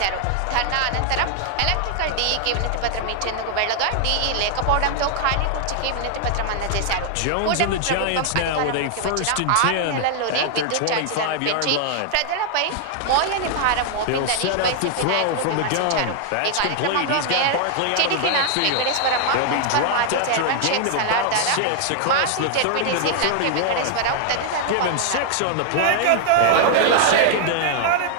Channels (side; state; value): both; different; correlation 0.00